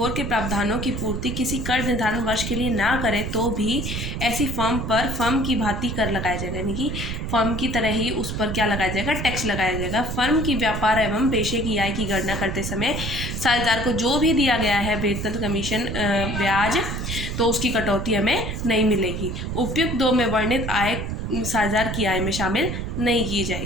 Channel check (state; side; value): noise; right; rumble, 4 dB below the sound